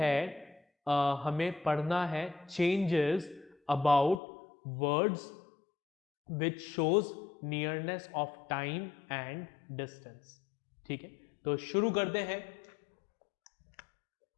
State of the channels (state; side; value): drops out; right; at 4.2 s